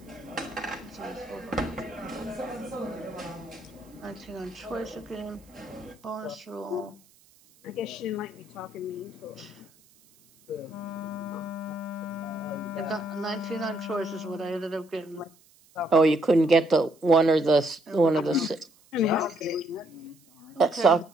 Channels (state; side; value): noise; right; hiss, 29 dB below the sound